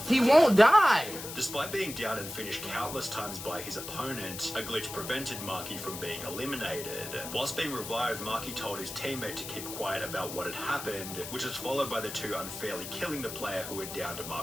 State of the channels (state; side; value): noise; left; hiss, 9 dB below the sound